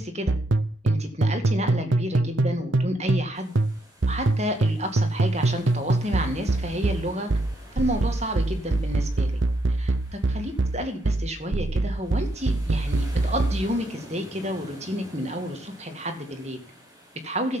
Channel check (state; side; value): normal; both; correlation 0.77